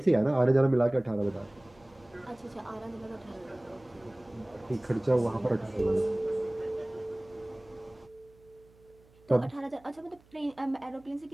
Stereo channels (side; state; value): right; noise; hum, 28 dB below the sound